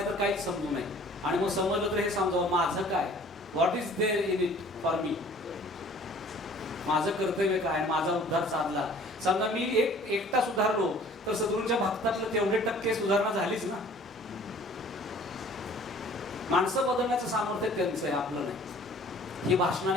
तर काहीच समजू नये. आणि मग समजलं तर हे समजावं माझं काय, what is there in it for me, माझं कर्तव्य काय, माझा उद्धार साधला. समजा मी एकटा सुधारलो तर सद्गुरूंच्या भक्तातलं तेवढे टक्के सुधारणा झालीच ना. माणसं बदलण्याचं सामर्थ्य त्यांचं आहे, आपलं नाही. ही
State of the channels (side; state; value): both; normal; correlation 0.51